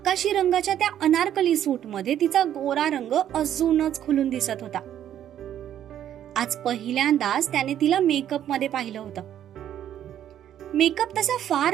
रंगाच्या त्या अनारकली सूटमध्ये तिचा गोरा रंग अजूनच खुलून दिसत होता. आज पहिल्यांदाच त्याने तिला मेकअप मध्ये पाहिलं होतं. मेकअप तसा फार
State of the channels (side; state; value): left; quieter; 10.7 dB